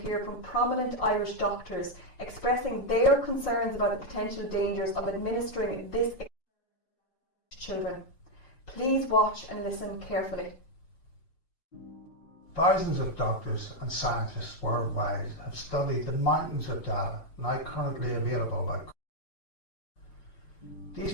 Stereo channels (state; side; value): late; right; 6.1 ms